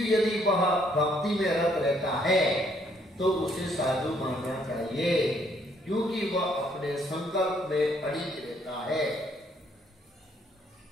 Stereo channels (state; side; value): normal; both; correlation 0.67